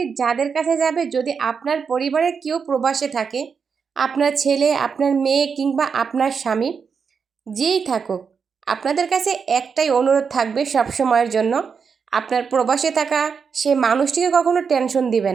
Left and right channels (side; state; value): left; quieter; 6.0 dB